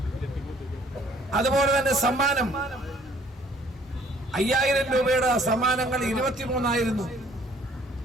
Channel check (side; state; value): both; normal; correlation 0.59